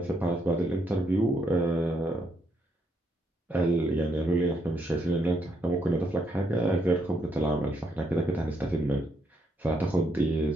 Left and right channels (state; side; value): normal; both; correlation 0.75